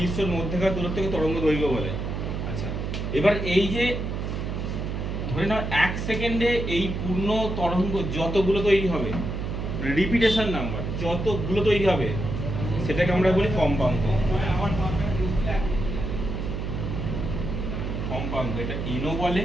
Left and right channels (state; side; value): noise; right; hum, 3 dB below the sound